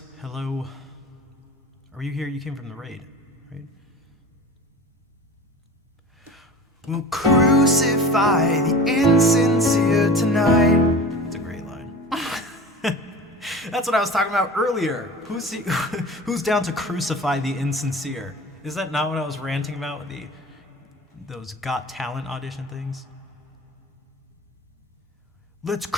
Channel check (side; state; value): both; normal; correlation 0.36